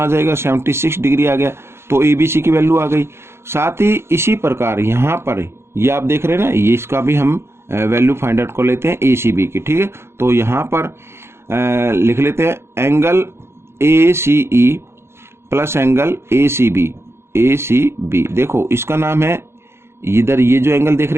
जाएगा, 76 डिग्री आ गया, तो ABC की वैल्यू आ गई। साथ ही इसी प्रकार यहाँ पर ये आप देख रहे हैं ना, ये इसका भी हम वैल्यू फाइंड आउट कर लेते हैं ACB की, ठीक है। तो यहाँ पर लिख लेते हैं angle ACE plus angle ACB। देखो इसका नाम है, इधर ये जो एंगल देख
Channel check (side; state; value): left; late; 0.12 ms